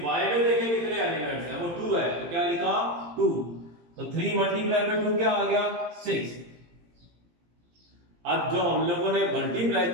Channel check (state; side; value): late; left; 17 ms